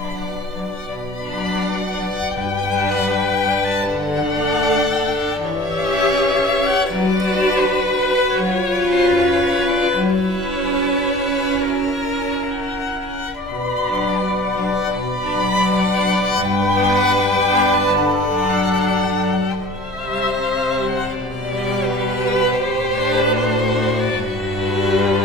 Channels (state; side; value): normal; both; correlation 0.46